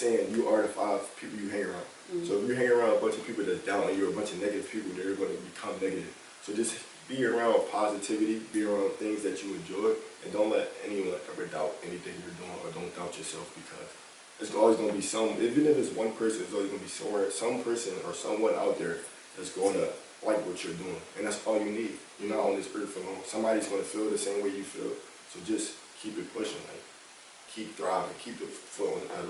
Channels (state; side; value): identical; both; correlation 1.00